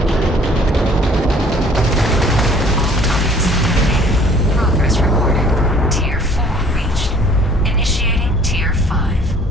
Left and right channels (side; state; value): both; normal; correlation 0.55